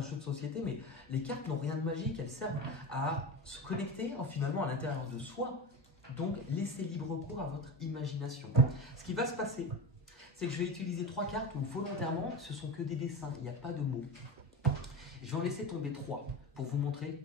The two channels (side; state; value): both; normal; correlation 0.25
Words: jeu de société, mais les cartes n'ont rien de magique, elles servent à se connecter finalement à l'intérieur de soi, donc laissez libre cours à votre imagination. Ce qui va se passer, c'est que je vais utiliser 3 cartes où volontairement, ce sont que des dessins, il n'y a pas de mots. Je vais en laisser tomber 3 pour vous montrer